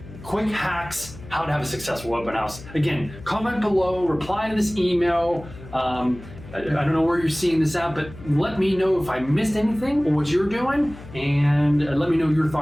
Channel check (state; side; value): noise; left; hum, 17 dB below the sound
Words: Quick hacks, how to have a successful open house. Again, comment below, reply to this email. I don't know where you're seeing this at, but let me know if I missed anything or what you're doing, and let me know your